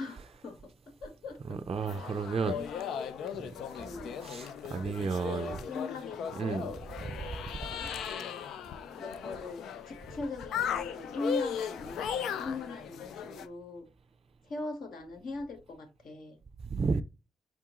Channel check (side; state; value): both; normal; correlation 0.67